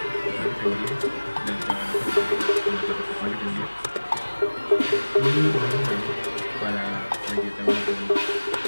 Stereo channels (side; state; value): both; inverted; correlation -1.00